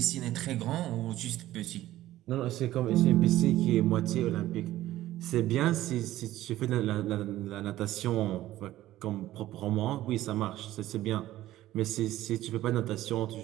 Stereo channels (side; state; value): left; quieter; 14.8 dB